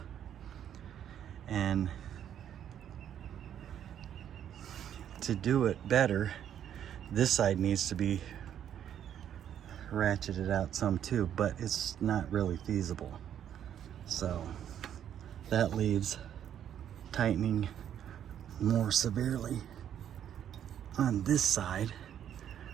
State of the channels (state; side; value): quieter; left; 9.8 dB